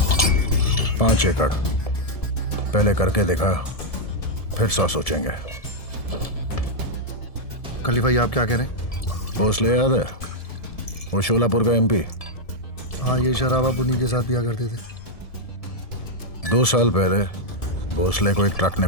5 एकड़ पहले करके देखा, फिर 100 सोचेंगे। खलीफा, ये आप क्या कह रहे हैं? भोसले याद है? वो शोलापुर का एमपी। हाँ, ये शराबा पुनी के साथ पिया करते थे। 2 साल पहले भोसले को एक ट्रक ने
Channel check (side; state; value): right; late; 1.7 ms